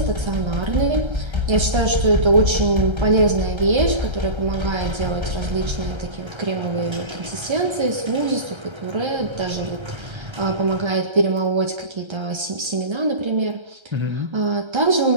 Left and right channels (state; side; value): late; left; 1.3 ms